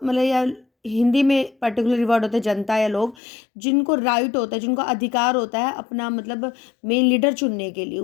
मतलब या हिंदी में पर्टिकुलर वर्ड होते हैं जनता या लोग, जिनको राइट होता है, जिनको अधिकार होता है अपना मतलब मेन लीडर चुनने के लिए,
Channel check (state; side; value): drops out; right; at 3.2 s